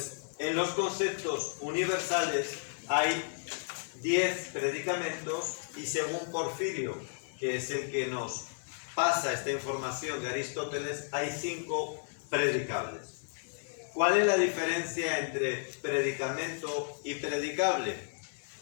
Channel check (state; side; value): silent; right; digital silence